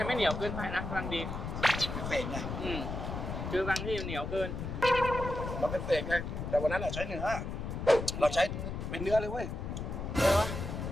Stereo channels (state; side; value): noise; left; rumble, 5 dB below the sound